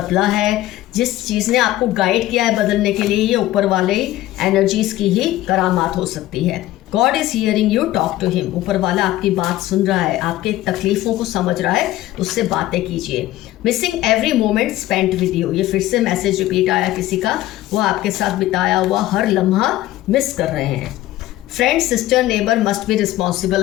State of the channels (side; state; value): right; quieter; 15.4 dB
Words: है, जिस चीज़ ने आपको गाइड किया है बदलने के लिए, ये ऊपर वाले एनर्जीज की ही करामात हो सकती है। God is hearing you, talk to him. ऊपर वाला आपकी बात सुन रहा है, आपके तकलीफों को समझ रहा है, उससे बातें कीजिए। Missing every moment spent with you. ये फिर से मैसेज रिपीट आया किसी का, वो आपके साथ बिताया हुआ हर लम्हा मिस कर रहे हैं। Friend, sister, neighbour must be responsible.